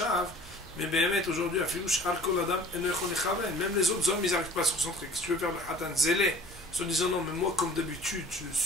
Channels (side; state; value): both; normal; correlation 0.47